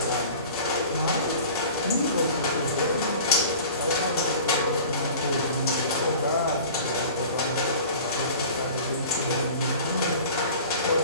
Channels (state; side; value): inverted; both; correlation -0.42